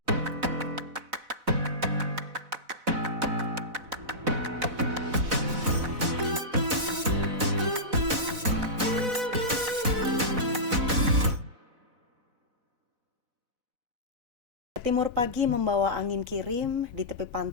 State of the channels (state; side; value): late; left; 4.0 ms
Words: Timur pagi membawa angin kirim, di tepi